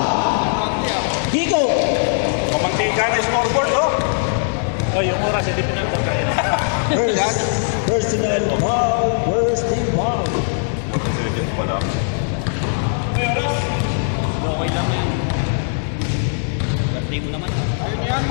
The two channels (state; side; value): silent; right; digital silence